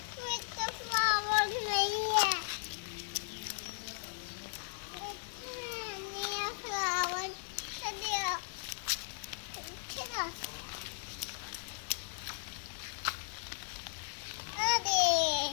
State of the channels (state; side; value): silent; right; 53 dB below the other